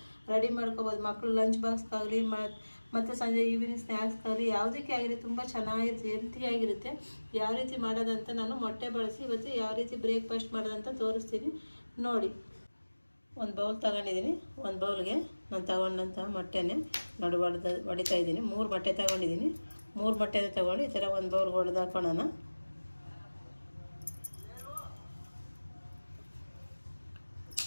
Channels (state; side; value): inverted; both; correlation -1.00